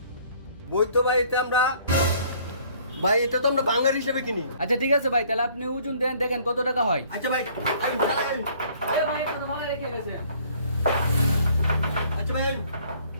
বই তো ভাই এটা আমরা ভাই এটা তো আমরা ভাঙার হিসেবে কিনি। আচ্ছা ঠিক আছে ভাই, তাহলে আপনি ওজন দেন, দেখেন কত টাকা হয়। আচ্ছা ভাই আমি চালাই। এ ভাই এটা তো ভালো রেখে গেছে। আচ্ছা ভাই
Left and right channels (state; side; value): inverted; both; correlation -0.58